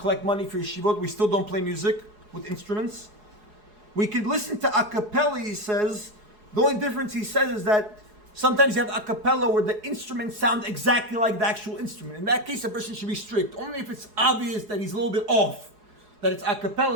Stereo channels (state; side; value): late; left; 4.8 ms